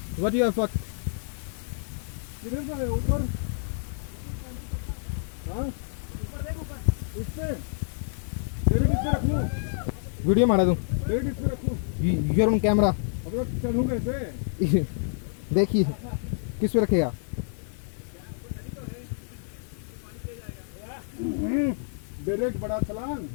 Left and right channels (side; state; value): right; silent; 59 dB below the other